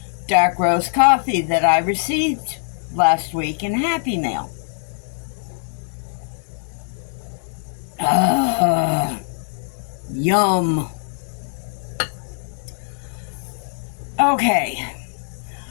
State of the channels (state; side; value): silent; right; 64 dB below the other